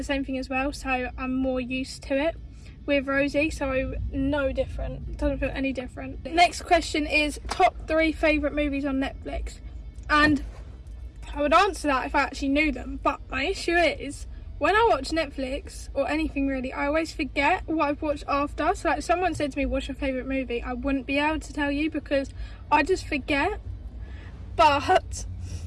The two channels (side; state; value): both; identical; correlation 1.00